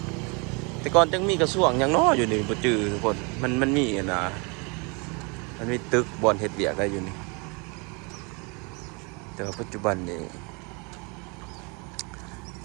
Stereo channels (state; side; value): quieter; left; 31.4 dB